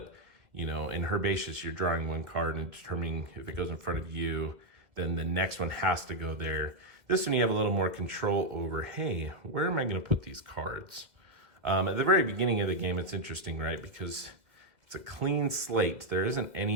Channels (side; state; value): left; late; 1.8 ms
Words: you know, in Herbaceous, you're drawing 1 card and determining if it goes in front of you, then the next one has to go there. This one you have a little more control over, hey, where am I going to put these cards? At the very beginning of the game, it's interesting, right? Because it's a clean slate. There isn't